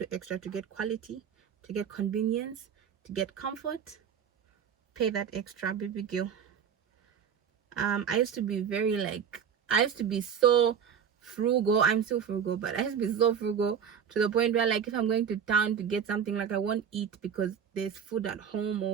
extra to get quality, to get convenience, to get comfort, pay that extra, baby girl. I used to be so frugal. I'm still frugal, but I used to be so frugal to the point where, like, if I'm going to town to get something, like, I won't eat because there's food at home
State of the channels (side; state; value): left; quieter; 7.7 dB